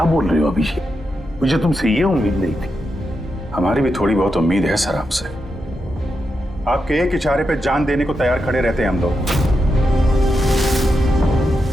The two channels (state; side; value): normal; both; correlation 0.86